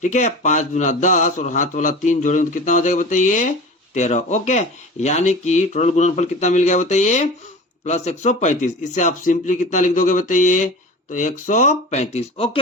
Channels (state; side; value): normal; both; correlation 0.35